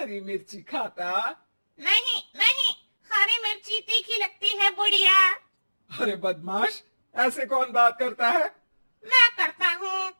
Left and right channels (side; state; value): both; inverted; correlation -1.00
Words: मिर्ची खाता। नहीं नहीं, हरी मिर्ची तीखी लगती है बुढ़िया। अरे बदमाश, ऐसे कौन बात करता है? मैं करता हूँ।